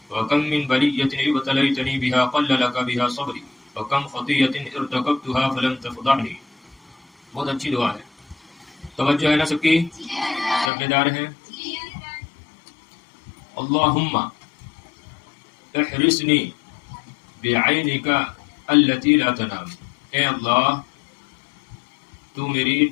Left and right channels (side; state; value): right; drops out; at 10.7 s